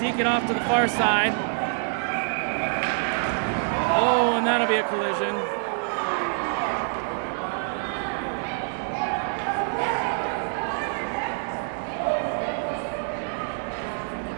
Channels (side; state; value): left; silent; 61 dB below the other